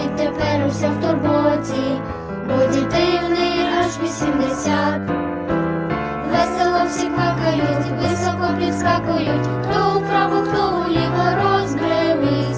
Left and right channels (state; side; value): identical; both; correlation 1.00